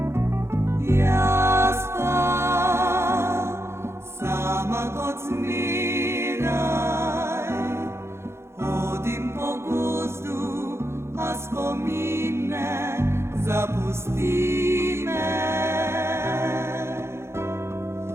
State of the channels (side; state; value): left; late; 0.13 ms